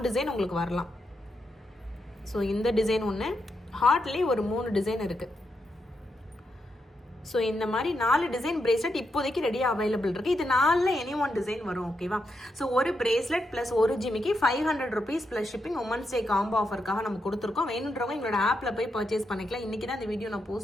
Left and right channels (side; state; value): both; normal; correlation 0.83